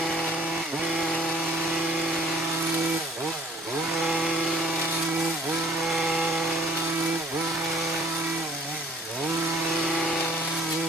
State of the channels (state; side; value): normal; both; correlation 0.55